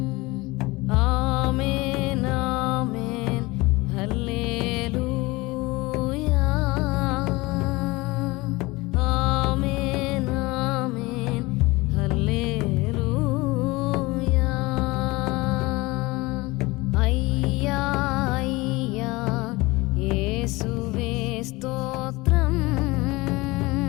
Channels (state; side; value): quieter; right; 22.2 dB